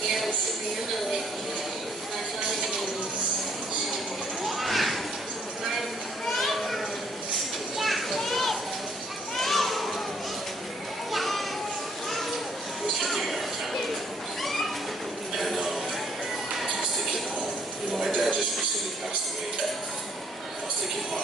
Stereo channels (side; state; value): both; normal; correlation 0.66